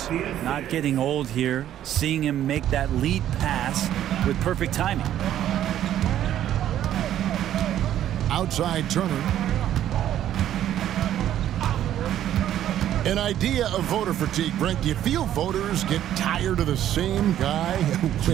Not getting old here. Seeing him make that lead pass with perfect timing. Outside Turner. An idea of voter fatigue, Brent. Do you feel voters get tired of the same guy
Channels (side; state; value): left; quieter; 11.5 dB